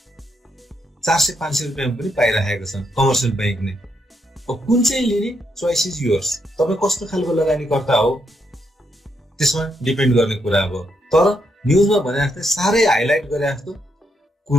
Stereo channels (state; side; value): normal; both; correlation 0.78